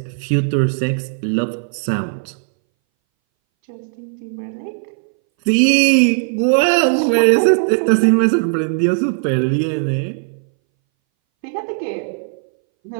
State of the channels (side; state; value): left; silent; 63 dB below the other